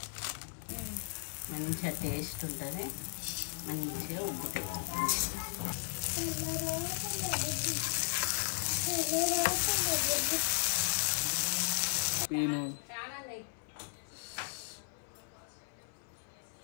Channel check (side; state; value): right; silent; 54 dB below the other